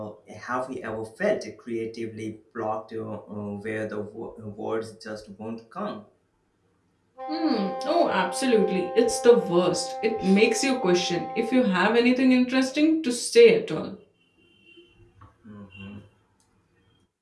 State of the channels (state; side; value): identical; both; correlation 1.00